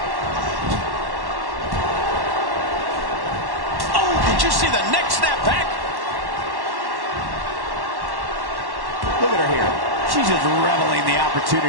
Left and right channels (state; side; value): late; left; 1.1 ms